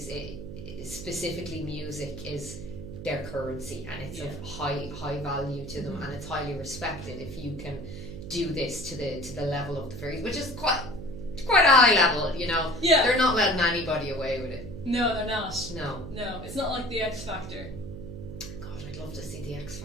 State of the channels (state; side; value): noise; right; hum, 10 dB below the sound